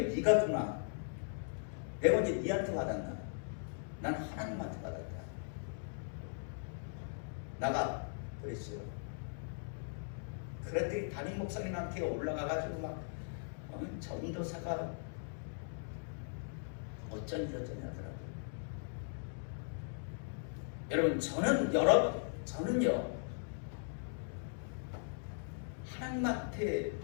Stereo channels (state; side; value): silent; right; digital silence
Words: 네가 주나? 내가 언제 네한테 받았나? 난 하나님한테 받았다. 나가 그랬어요. 그랬더니 담임 목사님한테 올라가가지고 막 전도사가 어쩌니 하더라고요. 여러분 저는요 하나님한테